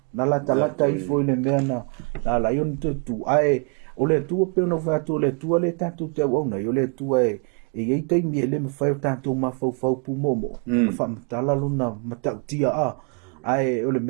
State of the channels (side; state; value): left; quieter; 37.5 dB